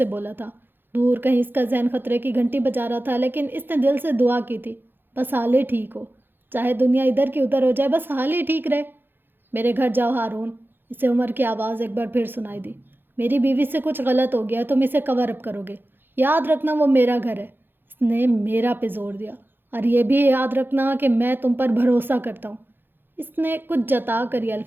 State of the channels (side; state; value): left; late; 0.099 ms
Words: بولا تھا۔ دور کہیں اس کا ذہن خطرے کی گھنٹی بجا رہا تھا، لیکن اس نے دل سے دعا کی تھی، بس حال ہی ٹھیک ہو، چاہے دنیا ادھر کی ادھر ہو جائے، بس حال ہی ٹھیک رہے۔ میرے گھر جاؤ ہارون، اسے عمر کی آواز ایک بار پھر سنائی دی۔ میری بیوی سے کچھ غلط ہو گیا، تم اسے کور اپ کرو گے، یاد رکھنا وہ میرا گھر ہے۔ اس نے میرا پہ زور دیا، اور یہ بھی یاد رکھنا کہ میں تم پر بھروسہ کرتا ہوں۔ اس نے کچھ جتا کر یہ